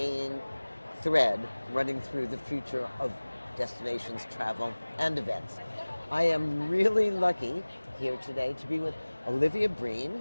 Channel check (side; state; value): both; inverted; correlation -1.00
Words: thread running through the future of destinations, travel, and events. I am really lucky here today to be with Olivia